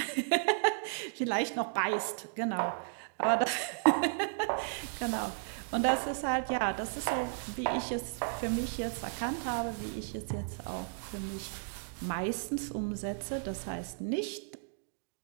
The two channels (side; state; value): left; silent; digital silence